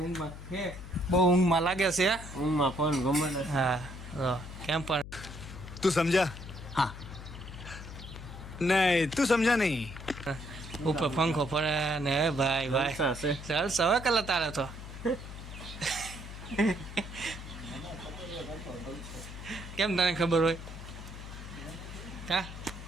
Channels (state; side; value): noise; left; hum, 12 dB below the sound